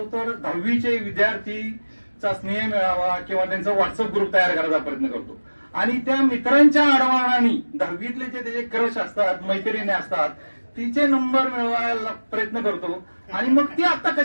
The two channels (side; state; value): both; inverted; correlation -1.00